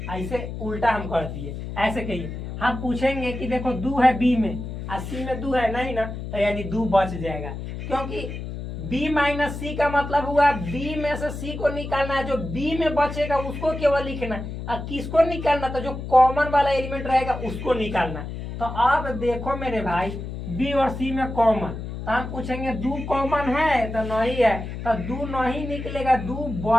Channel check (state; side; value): noise; left; hum, 7 dB below the sound